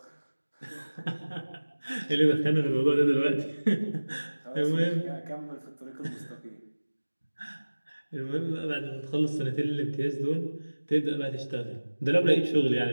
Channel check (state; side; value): inverted; both; correlation -1.00